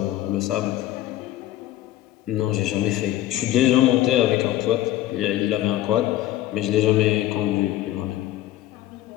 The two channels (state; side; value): quieter; right; 14.2 dB